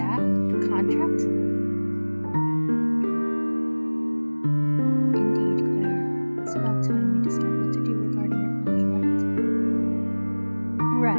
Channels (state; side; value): inverted; both; correlation -1.00